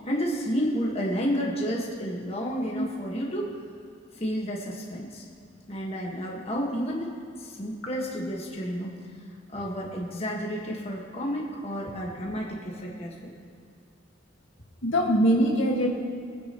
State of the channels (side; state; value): both; normal; correlation 0.57